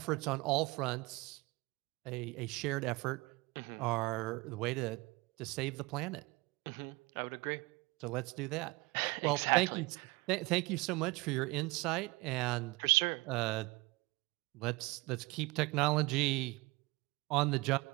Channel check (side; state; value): left; quieter; 23.7 dB